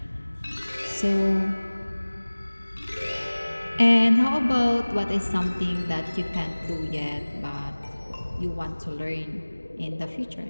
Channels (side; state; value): both; inverted; correlation -1.00